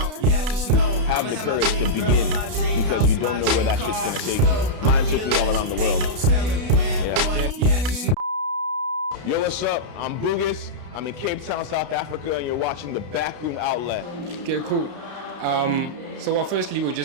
Yeah, just know I'ma have my dream girl in my dream house in my dream car. Mine took me all around the world. Ain't no telling when, but yeah, just know. Yo, what's up? I'm Bugus. I'm in Cape Town, South Africa, and you're watching the Backroom outlet. Okay, cool. So firstly, we'd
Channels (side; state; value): left; late; 33 ms